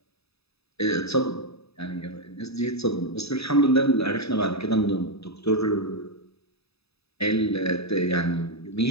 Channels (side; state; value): right; late; 0.78 ms